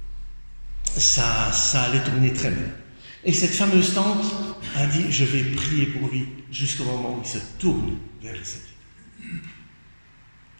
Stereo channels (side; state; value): both; inverted; correlation -1.00